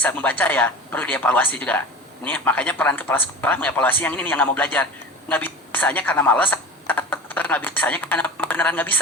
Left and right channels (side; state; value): both; normal; correlation 0.34